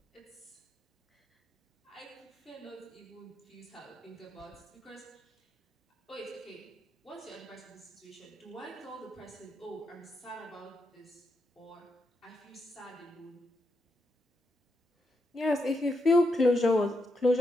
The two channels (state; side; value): normal; both; correlation 0.83